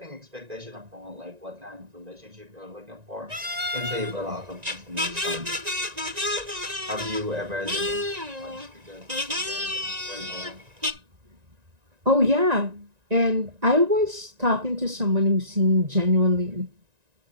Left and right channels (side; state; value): left; late; 1.9 ms